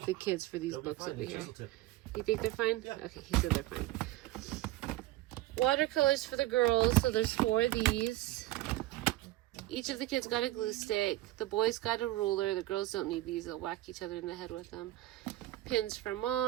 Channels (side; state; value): left; quieter; 16.4 dB